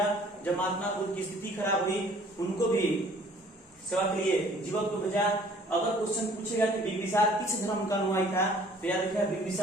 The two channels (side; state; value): both; normal; correlation 0.55